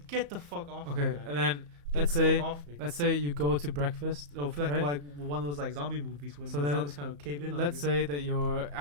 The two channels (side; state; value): left; late; 34 ms